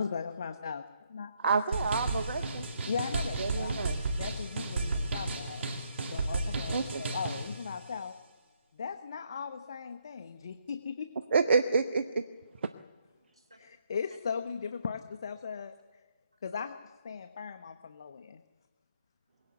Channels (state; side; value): inverted; both; correlation -0.74